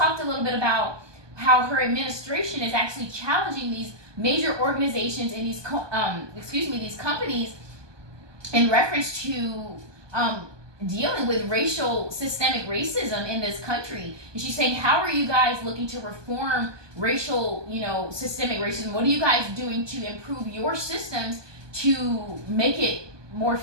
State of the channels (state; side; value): late; left; 1.2 ms